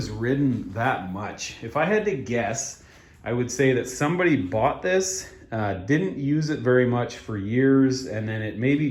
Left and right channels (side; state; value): both; identical; correlation 1.00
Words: ridden that much. If I had to guess, I would say that somebody bought this, didn't use it very much for years, and then it maybe